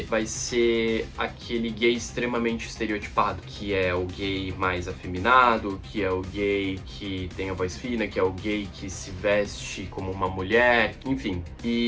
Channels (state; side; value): identical; both; correlation 1.00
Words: vai ser aquele gay extremamente estereotipado, que é o gay mais afeminado, que é o gay que tem a voz fina, que é o gay que se veste como uma mulher, enfim.